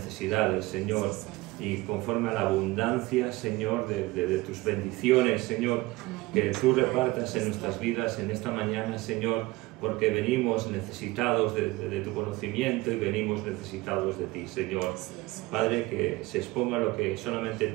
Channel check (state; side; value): quieter; left; 20.8 dB